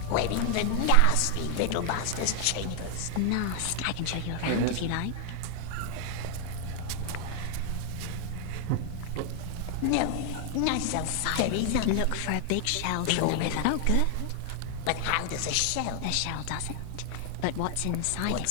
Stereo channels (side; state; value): both; different; correlation 0.00